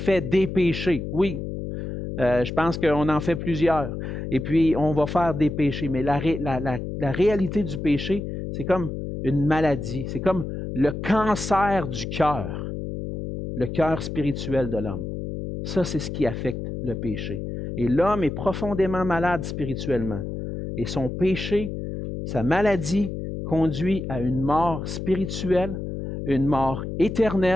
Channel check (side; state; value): left; noise; hum, 5 dB below the sound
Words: des péchés. Oui, je pense qu'on en fait plusieurs. Et puis, on va faire des péchés. Mais la réalité du péché, c'est comme une maladie. C'est comme le cancer du cœur. Le cœur spirituel de l'homme. Ça, c'est ce qui affecte le péché. Et l'homme est profondément malade spirituellement. Et son péché, sa maladie, conduit à une mort spirituelle, une mort